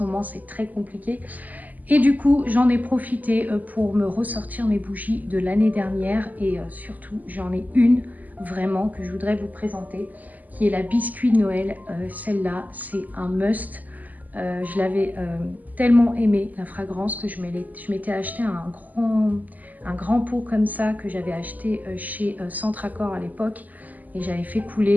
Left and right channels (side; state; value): left; late; 0.081 ms